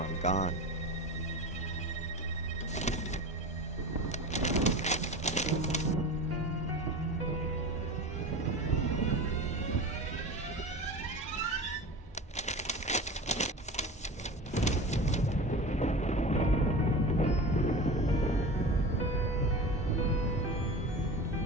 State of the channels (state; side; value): normal; both; correlation 0.31